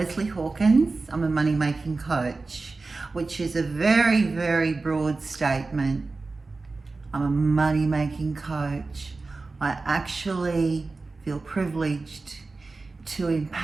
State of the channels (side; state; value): left; quieter; 3.7 dB